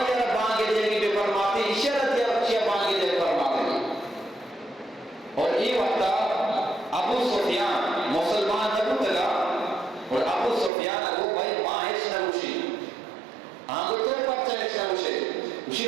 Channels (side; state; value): left; drops out; at 10.7 s